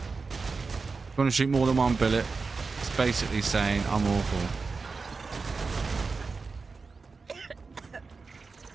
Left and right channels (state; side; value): quieter; left; 4.4 dB